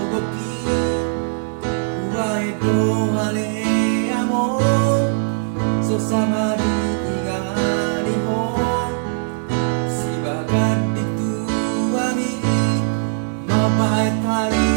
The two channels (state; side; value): silent; left; digital silence